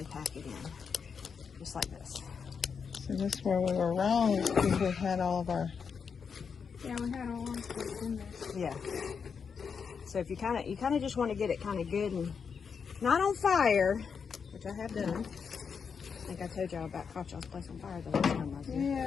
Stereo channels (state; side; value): quieter; right; 6.2 dB